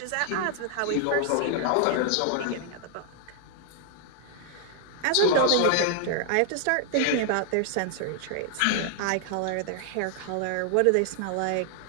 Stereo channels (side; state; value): both; different; correlation 0.00